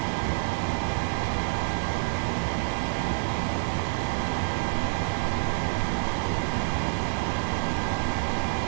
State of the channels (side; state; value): left; silent; digital silence